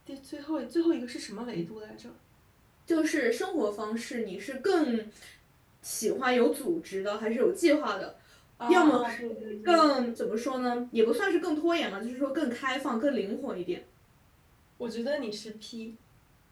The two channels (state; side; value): identical; both; correlation 1.00